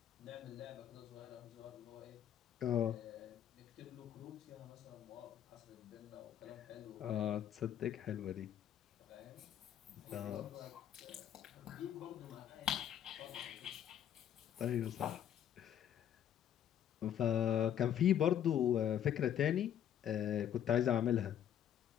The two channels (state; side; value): quieter; right; 10.1 dB